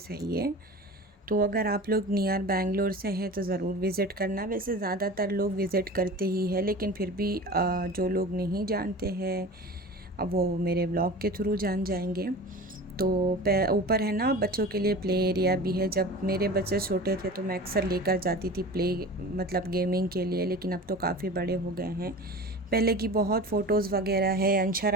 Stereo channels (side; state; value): both; normal; correlation 0.35